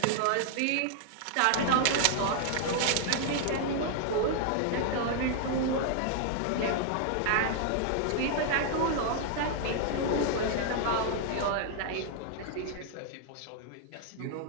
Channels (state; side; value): different; both; correlation 0.00